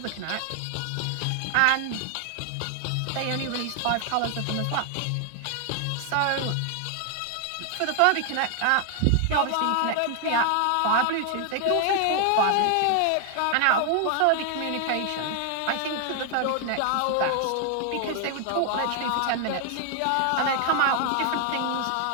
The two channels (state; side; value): different; both; correlation 0.00